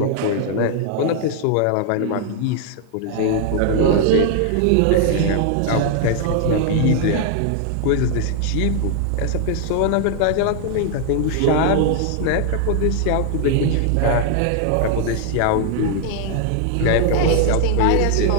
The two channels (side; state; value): both; different; correlation 0.00